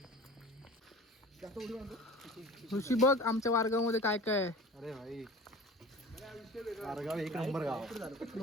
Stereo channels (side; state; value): both; normal; correlation 0.40